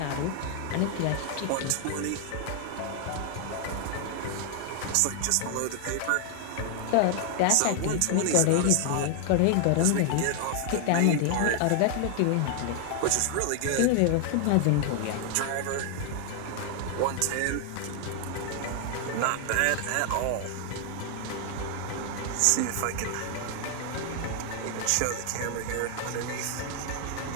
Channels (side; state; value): both; different; correlation 0.00